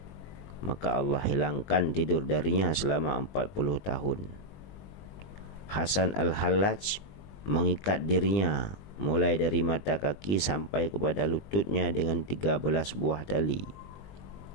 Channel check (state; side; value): late; right; 20 ms